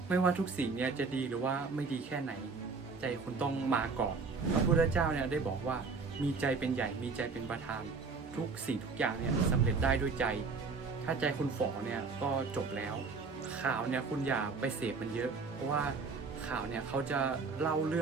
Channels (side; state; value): left; quieter; 4.6 dB